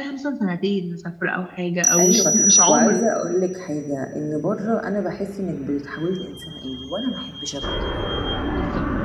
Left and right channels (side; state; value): both; identical; correlation 1.00